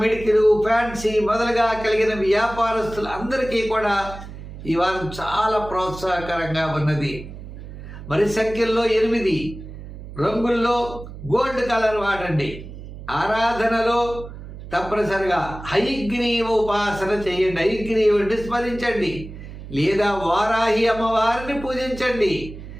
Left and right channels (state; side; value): noise; right; hum, 13 dB below the sound